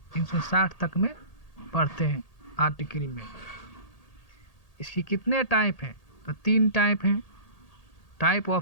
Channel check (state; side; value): late; right; 1.8 ms